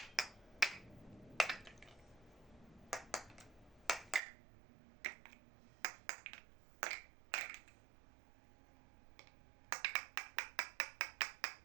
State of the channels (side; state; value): left; drops out; at 4.2 s